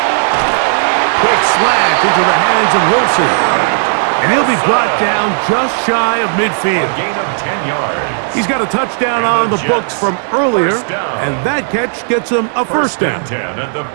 Quick slant into the hands of Wilson. And he'll be brought down just shy of midfield. A gain of 10 yards. He's got a touchdown on the books from earlier, and that catch gets him a first down. 10 at the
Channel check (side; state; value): left; silent; digital silence